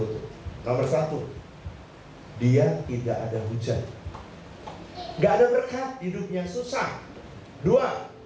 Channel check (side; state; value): both; identical; correlation 1.00